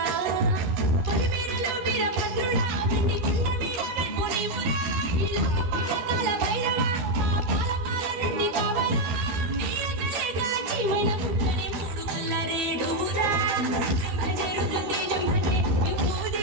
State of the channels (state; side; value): late; left; 12 ms